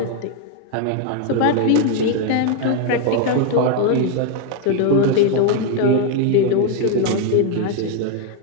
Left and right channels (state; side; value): different; both; correlation 0.01